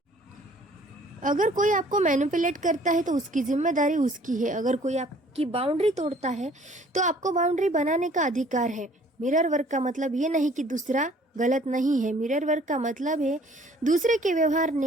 अगर कोई आपको मैनिपुलेट करता है तो उसकी जिम्मेदारी उसकी है। अगर कोई आपकी बाउंड्री तोड़ता है तो आपको बाउंड्री बनाने का अधिकार है। मिरर वर्क का मतलब ये नहीं कि दूसरा गलत नहीं है। मिरर वर्क का मतलब है दूसरे के व्यवहार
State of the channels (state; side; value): normal; both; correlation 0.56